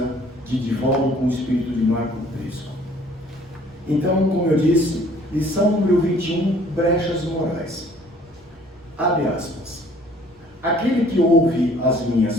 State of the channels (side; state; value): both; normal; correlation 0.56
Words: de Divaldo com o espírito de Marco Prisco. Então, como eu disse, lição número 21, brechas morais. Abre aspas. Aquele que ouve as minhas